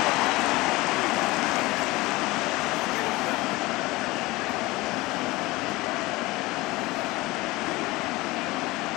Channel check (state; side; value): quieter; right; 20.8 dB